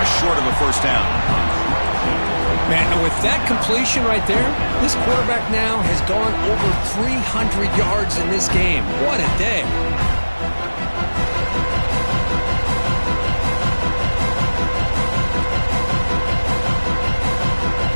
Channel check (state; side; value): inverted; both; correlation -1.00